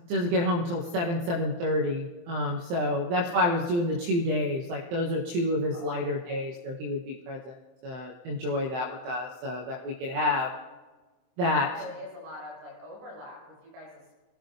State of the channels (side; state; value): left; late; 23 ms